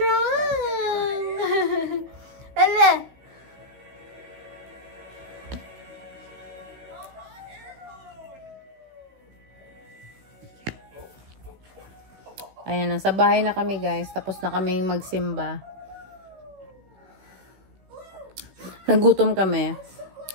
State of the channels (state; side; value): late; left; 16 ms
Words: Ala! Ayan, nasa bahay na kami guys. Tapos na kami magsimba. Nagutom kami.